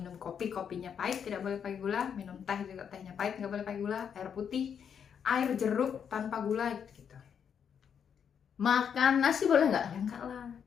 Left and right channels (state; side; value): quieter; right; 7.7 dB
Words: kopi, kopinya pahit, tidak boleh pakai gula. Minum teh juga tehnya pahit, nggak boleh pakai gula. Air putih, air jeruk tanpa gula gitu. Makan nasi boleh nggak? Ya enggak lah,